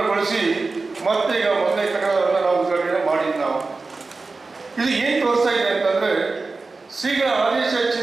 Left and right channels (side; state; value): left; quieter; 3.8 dB